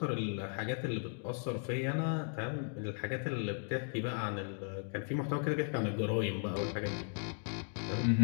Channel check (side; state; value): right; silent; 54 dB below the other